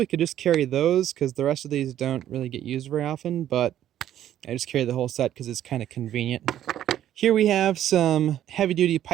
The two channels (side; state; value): left; quieter; 11.5 dB